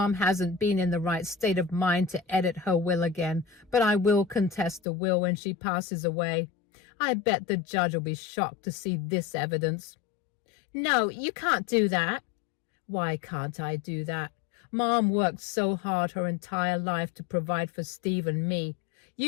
hasn't been in the right state of mind to edit her will again, but I will contest the will when she passes away. I bet the judge will be shocked to see this evidence. No, you can't do that. Why can't I do that? Mom worked so hard her entire life to provide for Steve and me.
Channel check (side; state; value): right; drops out; at 4.8 s